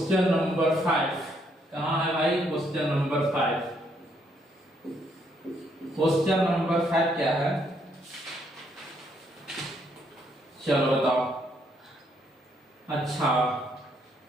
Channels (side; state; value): both; normal; correlation 0.72